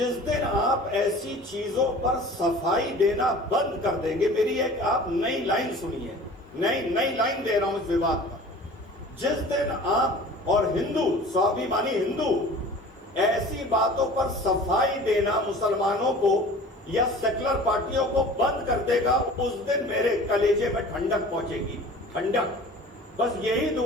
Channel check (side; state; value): both; normal; correlation 0.43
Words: दिन आप ऐसी चीजों पर सफाई देना बंद कर देंगे, मेरी एक आप नई लाइन सुनिए, नई लाइन दे रहा हूं इस विवाद पर। जिस दिन आप और हिंदू, स्वाभिमानी हिंदू ऐसी बातों पर सफाई देना मुसलमानों को या सेकुलर पार्टियों को बंद कर देगा, उस दिन मेरे कलेजे में ठंडक पहुंचेगी, ठंडक। बस यही